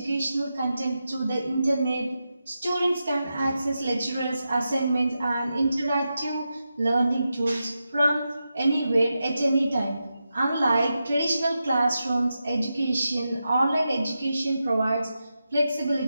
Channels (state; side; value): inverted; both; correlation -0.89